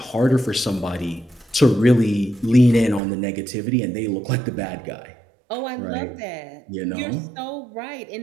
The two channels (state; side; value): drops out; left; at 3.0 s